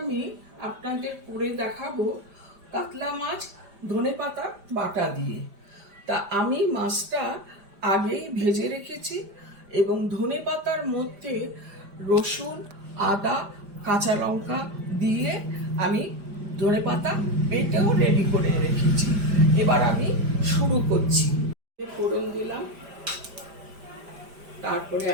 আমি আপনাদের করে দেখাবো কাতলা মাছ ধনেপাতা বাটা দিয়ে। তা আমি মাছটা আগেই ভেজে রেখেছি এবং ধনেপাতার মধ্যে রসুন, আদা, কাঁচা লঙ্কা দিয়ে আমি ধনেপাতা বেটেও রেডি করে রেখেছি। এবার আমি শুরু করছি। ফোড়ন দিলাম, তারপরে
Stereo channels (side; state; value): left; late; 5.0 ms